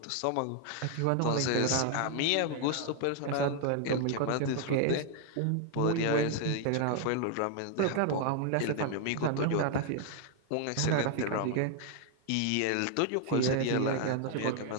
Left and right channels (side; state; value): both; different; correlation 0.00